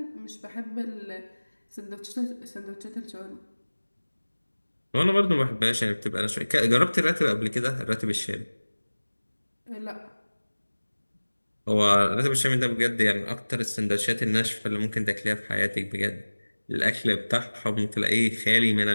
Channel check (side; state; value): both; inverted; correlation -1.00